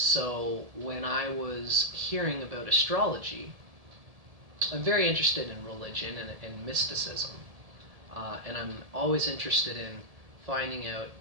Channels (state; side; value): late; left; 1.7 ms